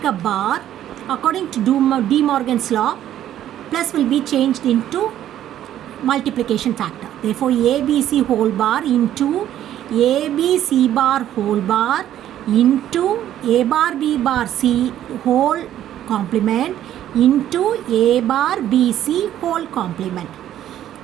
a bar, according to De Morgan's law, plus will be changed into multiplication factor. Therefore ABC whole bar into ABC bar whole bar into A bar B bar C whole complement into A bar B C whole complement.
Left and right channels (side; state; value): left; quieter; 11.7 dB